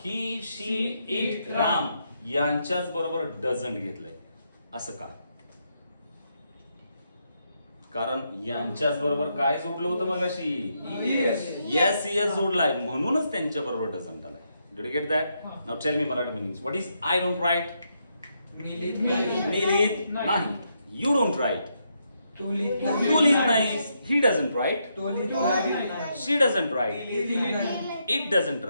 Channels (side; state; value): both; inverted; correlation -0.79